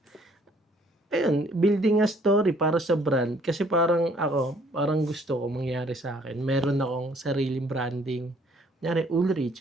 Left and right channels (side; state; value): both; normal; correlation 0.61